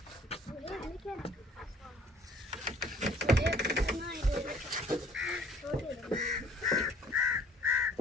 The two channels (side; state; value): both; normal; correlation 0.56